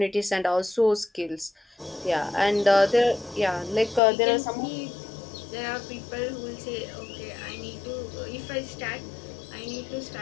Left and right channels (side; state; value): right; drops out; at 4.0 s